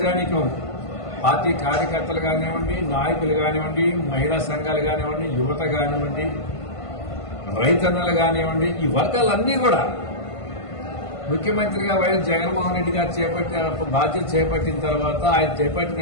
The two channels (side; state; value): right; late; 1.5 ms